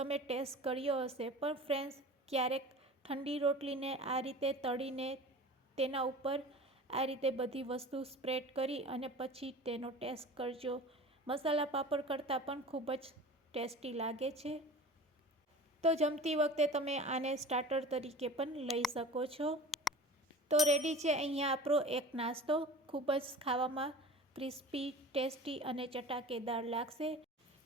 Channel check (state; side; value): normal; both; correlation 0.38